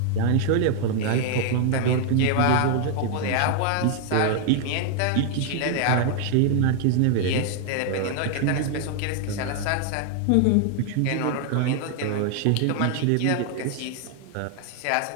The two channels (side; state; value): both; different; correlation 0.00